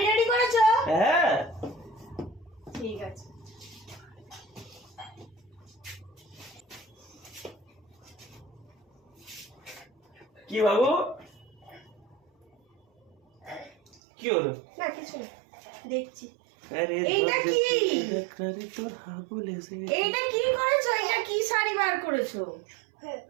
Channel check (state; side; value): drops out; left; at 14.0 s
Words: রেডি করেছো? হ্যাঁ ঠিক আছে। কি বাবু, কি হলো? না কিছু না, দেখছি। আরে এইটা কি? তোর হাবুল এসেছে। এইটা কি করেছো? এটা কি শাড়ি বার করেছো?